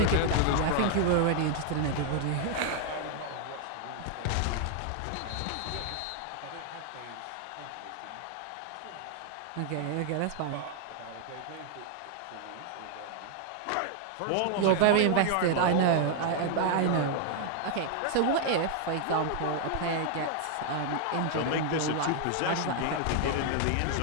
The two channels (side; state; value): both; different; correlation 0.00